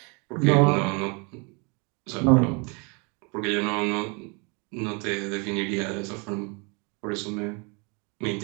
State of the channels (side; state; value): left; quieter; 32.2 dB